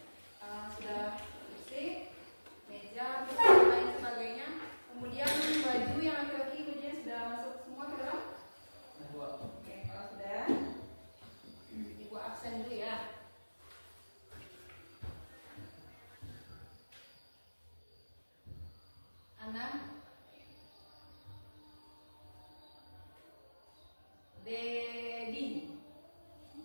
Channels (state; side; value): inverted; both; correlation -1.00